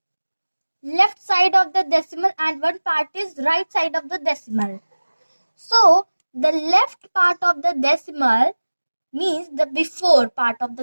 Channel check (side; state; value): both; inverted; correlation -1.00